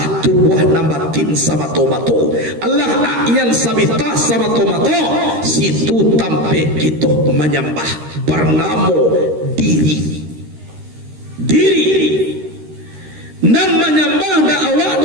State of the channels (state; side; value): late; left; 13 ms